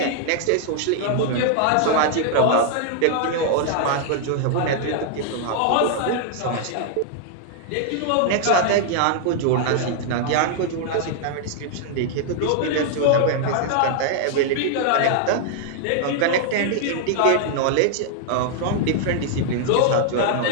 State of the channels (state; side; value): different; both; correlation 0.00